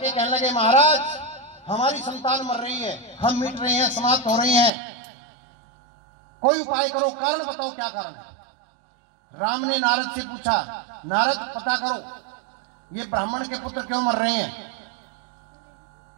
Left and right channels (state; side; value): drops out; left; at 4.7 s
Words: कहने लगे, महाराज हमारी संतान मर रही है, हम मिट रहे हैं, समाप्त हो रहे हैं, कोई उपाय करो, कारण बताओ क्या कारण है। राम ने नारद से पूछा, नारद पता करो ये ब्राह्मण के पुत्र क्यों मर रहे हैं।